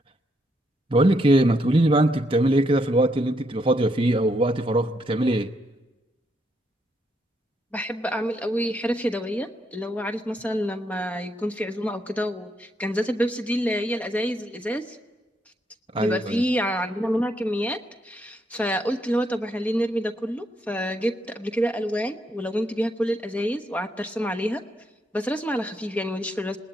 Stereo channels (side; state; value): both; normal; correlation 0.77